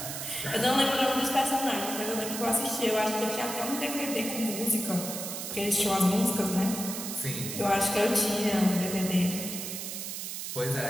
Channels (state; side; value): noise; right; hiss, 6 dB below the sound